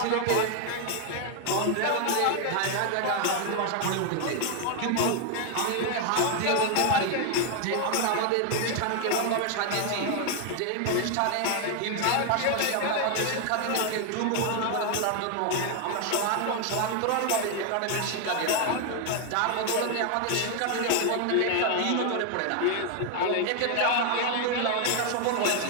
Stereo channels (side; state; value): both; different; correlation 0.00